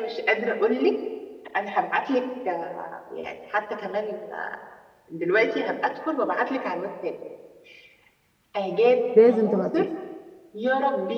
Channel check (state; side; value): identical; both; correlation 1.00